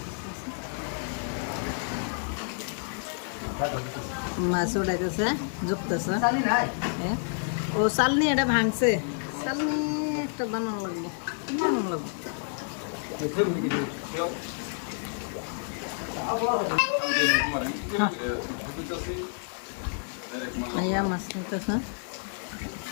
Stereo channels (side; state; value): right; silent; 58 dB below the other